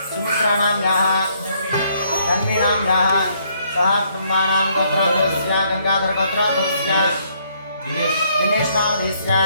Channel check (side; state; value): both; inverted; correlation -0.69